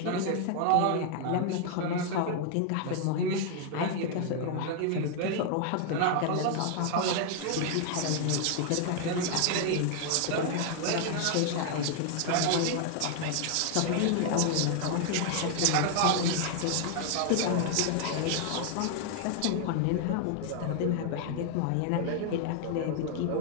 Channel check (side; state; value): both; different; correlation 0.00